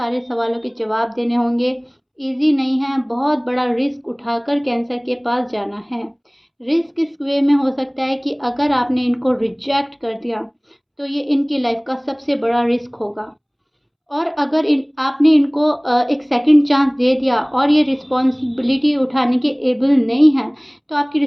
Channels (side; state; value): both; identical; correlation 1.00